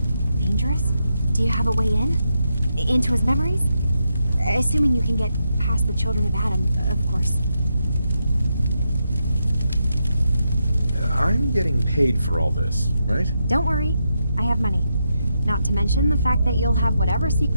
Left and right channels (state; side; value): inverted; both; correlation -0.84